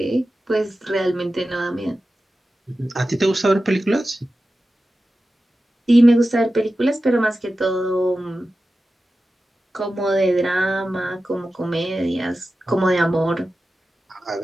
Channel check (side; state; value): both; normal; correlation 0.93